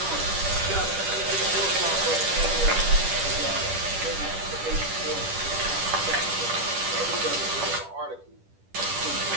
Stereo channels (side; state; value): left; late; 10 ms